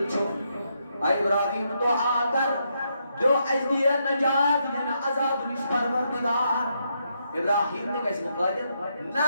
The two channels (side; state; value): both; inverted; correlation -0.79